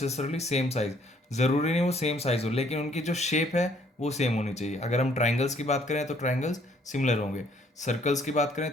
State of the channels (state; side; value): normal; both; correlation 0.64